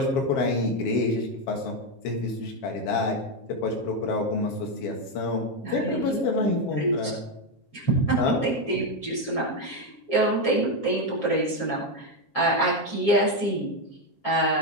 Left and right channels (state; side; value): late; right; 7.4 ms